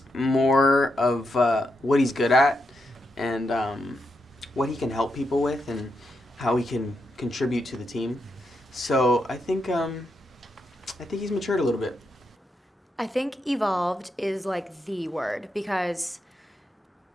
more of what he's good at and what he can help people with and how he can contribute to the team. So I think he's matured a little bit. I think evolved is like the word because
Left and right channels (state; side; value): normal; both; correlation 0.83